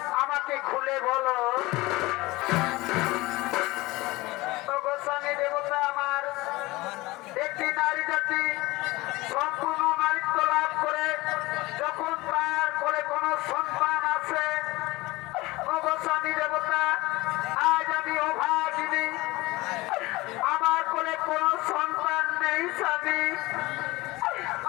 আমাকে খুলে বলো। গোস্বামী দেবতা আমার, একটি নারী জাতি সম্পূর্ণ নারীত্ব লাভ করে যখন তার করে কোনো সন্তান আছে, গোস্বামী দেবতা আজ আমি অভাগিনী, আমার কোলে কোনো সন্তান নেই স্বামী,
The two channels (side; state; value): right; quieter; 20.8 dB